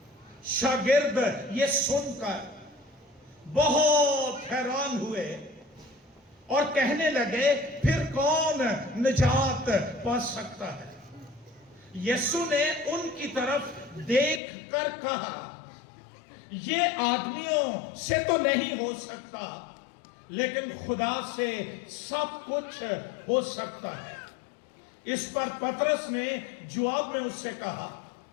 شاگرد یہ سن کر بہت حیران ہوئے اور کہنے لگے پھر کون نجات پا سکتا ہے. یسوع نے ان کی طرف دیکھ کر کہا یہ آدمیوں سے تو نہیں ہو سکتا لیکن خدا سے سب کچھ ہو سکتا ہے. اس پر پطرس نے جواب میں اس سے کہا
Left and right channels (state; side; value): drops out; right; at 14.4 s